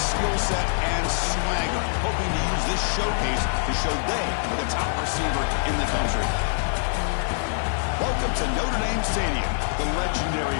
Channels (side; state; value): right; silent; 62 dB below the other